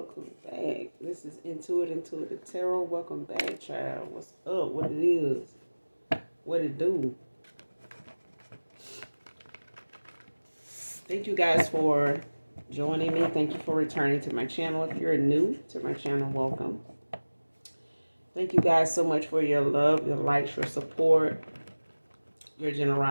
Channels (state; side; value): inverted; both; correlation -1.00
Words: back. This is Intuitive Tarot. Welcome back, child. What's up? What it is? What it do? Thank you guys for joining me. Thank you for returning to my channel. If you're new to my channel, welcome. Thank you guys so much for your love, your likes, your support, your